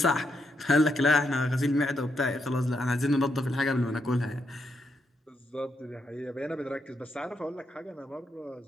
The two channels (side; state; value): both; normal; correlation 0.80